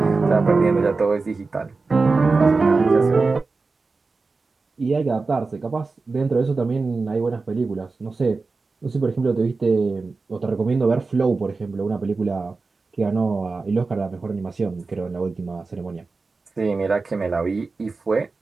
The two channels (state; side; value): quieter; left; 4.0 dB